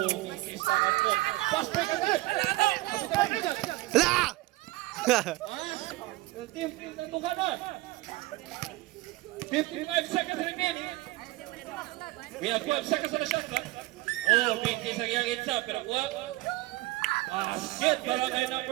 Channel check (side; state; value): left; quieter; 19.4 dB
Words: mintis lang ako. Pass break agad! Hala! Yung team nandugan na. 55 seconds remaining. We have 12 seconds on the shot clock. Oh, mintis ang yung itsa, pero kuha. Basket para kay